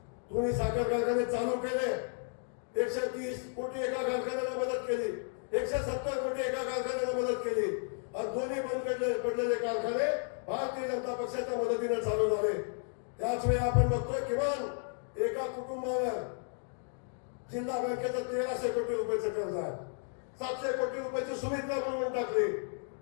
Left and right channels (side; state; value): right; silent; 56 dB below the other